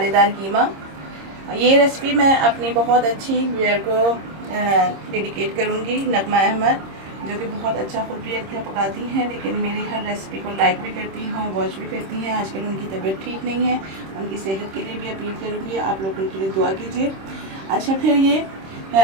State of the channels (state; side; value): late; left; 26 ms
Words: कीमा। ये रेसिपी मैं अपनी बहुत अच्छी व्यूअर को डेडिकेट करूंगी, नगमा अहमद, जो कि बहुत अच्छा खुद भी अच्छा पकाती हैं, लेकिन मेरी हर रेसिपी को लाइक भी करती हैं, वॉच भी करती हैं। आजकल उनकी तबीयत ठीक नहीं है, उनकी सेहत के लिए भी अपील करूँगी, आप लोग उनके लिए दुआ कीजिए। अच्छा, फिर ये